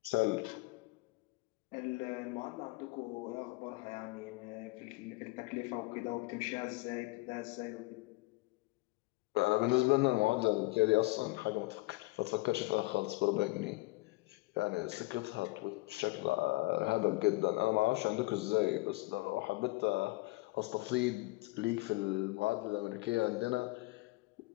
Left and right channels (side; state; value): right; quieter; 22.4 dB